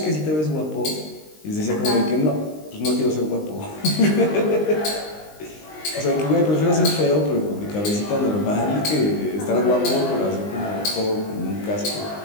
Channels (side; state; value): right; late; 19 ms